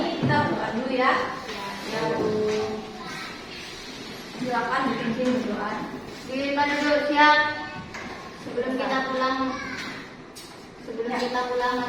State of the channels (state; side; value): identical; both; correlation 1.00